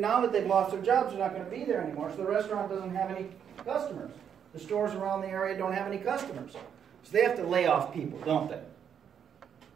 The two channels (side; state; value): left; quieter; 8.2 dB